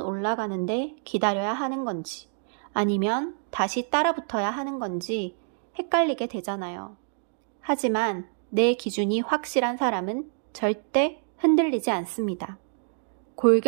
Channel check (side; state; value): left; silent; 60 dB below the other